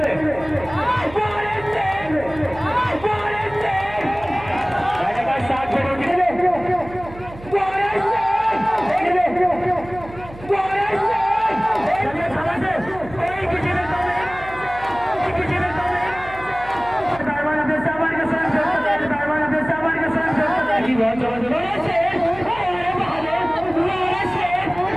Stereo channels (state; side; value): noise; right; hum, 17 dB below the sound